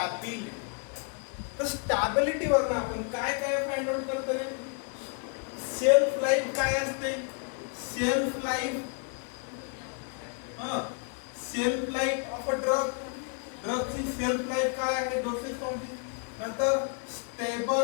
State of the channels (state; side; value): quieter; right; 38.3 dB